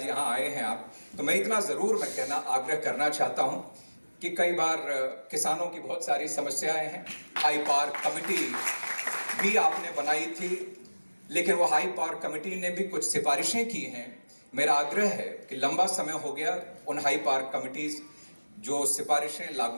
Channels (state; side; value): inverted; both; correlation -1.00